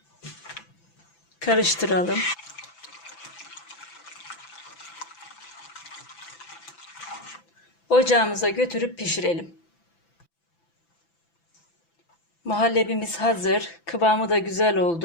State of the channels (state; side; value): late; right; 5.9 ms